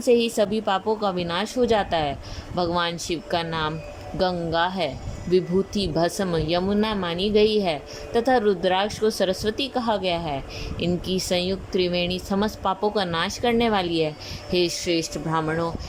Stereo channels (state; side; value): identical; both; correlation 1.00